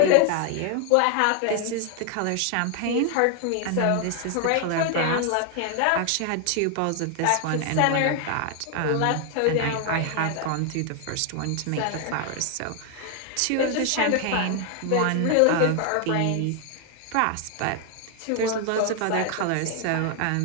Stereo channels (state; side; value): different; both; correlation 0.00